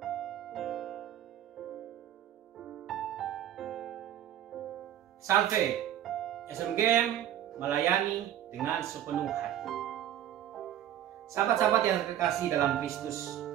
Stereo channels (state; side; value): quieter; left; 11.3 dB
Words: Salve, SMGM melayani dengan sepenuh hati. Sahabat-sahabat yang terkasih dalam Kristus,